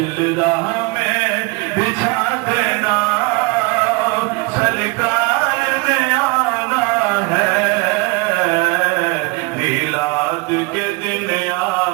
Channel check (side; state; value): left; quieter; 27.0 dB